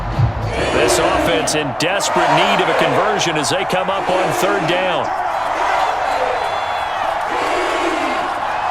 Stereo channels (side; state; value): both; identical; correlation 1.00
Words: This offense in desperate need of a conversion as they come up on third down.